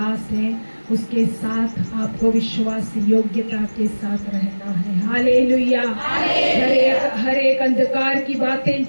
हैं, उसके साथ आपको विश्वास योग्यता के साथ रहना है। हालेलुया। हर एक अंधकार की बातें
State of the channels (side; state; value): both; inverted; correlation -1.00